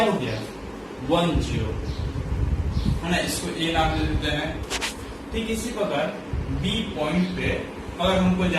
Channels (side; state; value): both; identical; correlation 1.00